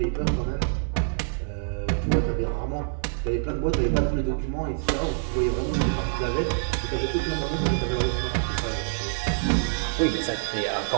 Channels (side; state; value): left; silent; digital silence